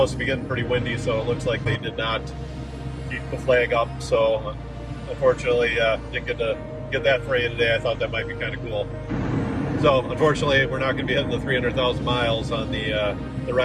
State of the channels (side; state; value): both; identical; correlation 1.00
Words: to be getting pretty windy, so it looks like they did not keep the flag up. So unfortunately, didn't get to get that for you today. I thought that might be kind of cool. So unfortunately, we're not going to be hitting the 300,000 miles on the